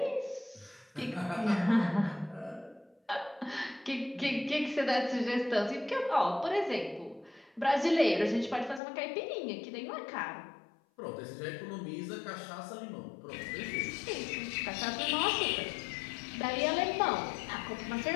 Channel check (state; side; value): drops out; right; at 8.8 s